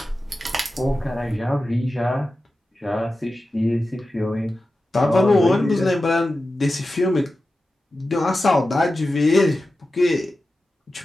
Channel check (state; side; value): normal; both; correlation 0.93